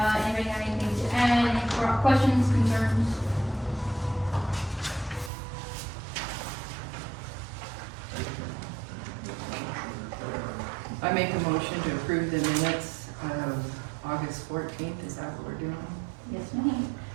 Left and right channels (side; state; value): left; drops out; at 5.3 s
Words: have anything to add, any questions, concerns? make a motion to approve the minutes of August 14th. Is that what we're doing? Yes, ma'am.